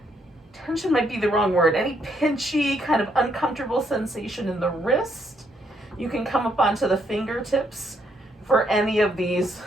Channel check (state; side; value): normal; both; correlation 0.73